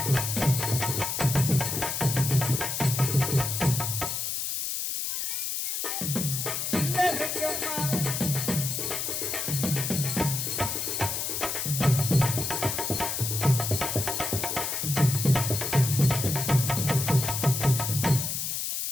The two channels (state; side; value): noise; left; hiss, 2 dB below the sound